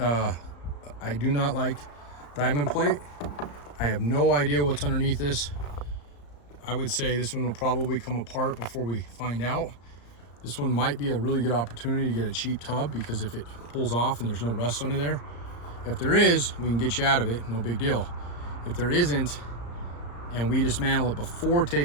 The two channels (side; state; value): right; late; 34 ms